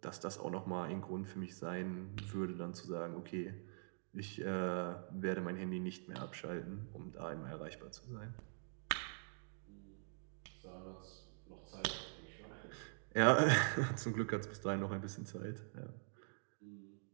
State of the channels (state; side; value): silent; left; digital silence